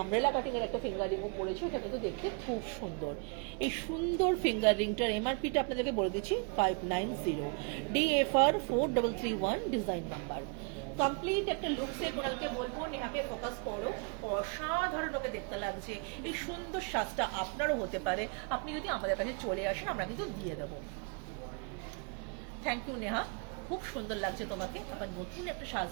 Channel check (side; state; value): left; quieter; 35.5 dB